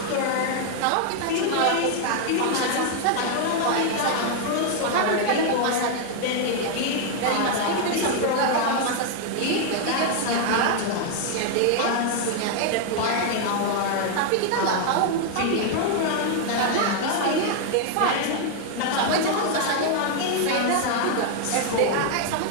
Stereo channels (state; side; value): different; both; correlation 0.00